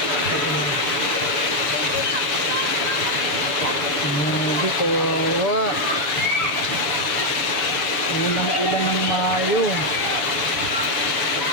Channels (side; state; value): right; late; 7.0 ms